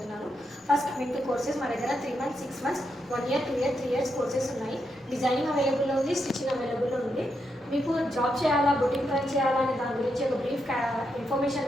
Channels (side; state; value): both; normal; correlation 0.82